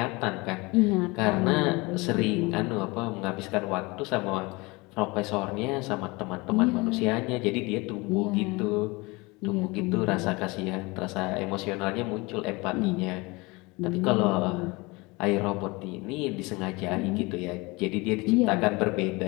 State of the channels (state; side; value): quieter; right; 24.8 dB